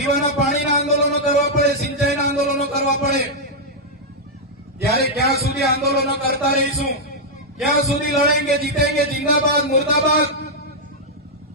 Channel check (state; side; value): normal; both; correlation -0.05